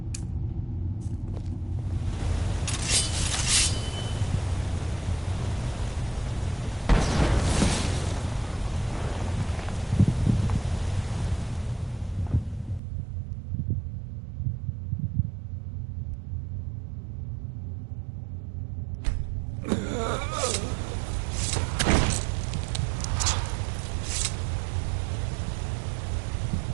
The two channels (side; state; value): left; drops out; at 12.8 s